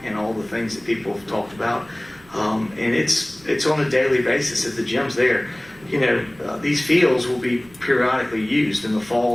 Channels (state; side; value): noise; right; rumble, 26 dB below the sound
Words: and all the things that people have talked about. And it's on a daily basis at the gym's there. These fields will be periodically used in the